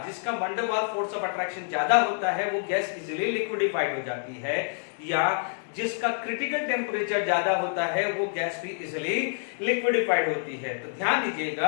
जिसका वंडरवाल फोर्स ऑफ अट्रैक्शन ज्यादा होता है वो गैस इजीली लिक्विडिफाइड हो जाती है, या जिसका क्रिटिकल टेम्परेचर ज्यादा होता है वो गैस भी इजीली लिक्विडिफाइड होती है। तो ध्यान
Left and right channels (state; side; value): silent; right; digital silence